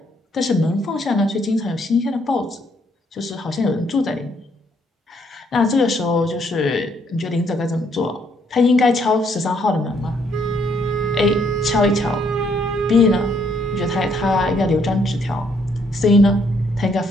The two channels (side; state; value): both; normal; correlation 0.70